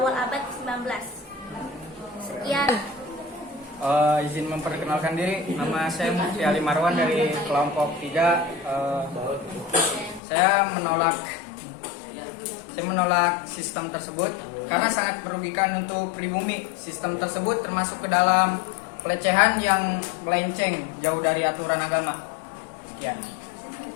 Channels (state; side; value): drops out; right; at 10.2 s